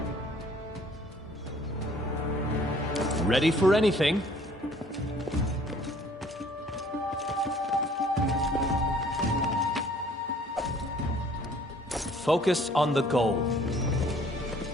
Ready for anything. Focus on the goal.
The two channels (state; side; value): normal; both; correlation 0.56